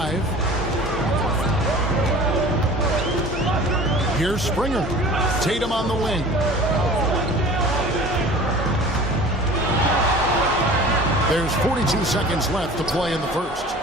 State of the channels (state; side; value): normal; both; correlation 0.42